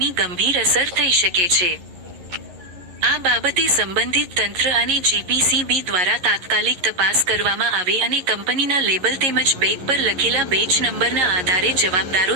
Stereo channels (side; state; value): left; late; 11 ms